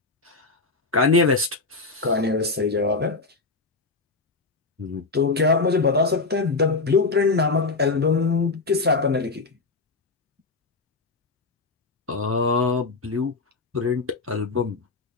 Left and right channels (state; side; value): quieter; right; 3.8 dB